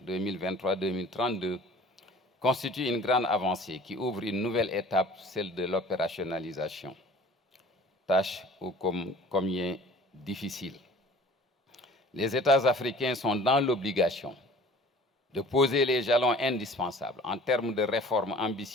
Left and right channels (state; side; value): normal; both; correlation 0.47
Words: 2023-2032 constitue une grande avancée qui ouvre une nouvelle étape, celle de l'opérationnalisation. Tâche ô combien difficile. Les États africains sont dans l'obligation de poser les jalons indispensables en termes de réformes